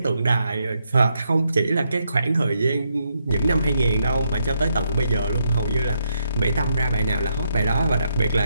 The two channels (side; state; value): both; inverted; correlation -0.78